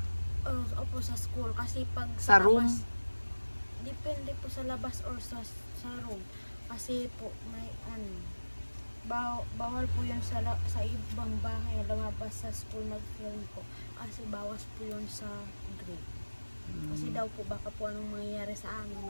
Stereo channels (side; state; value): both; inverted; correlation -1.00